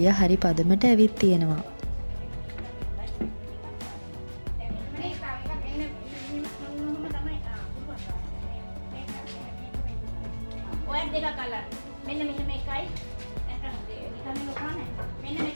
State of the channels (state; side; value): inverted; both; correlation -1.00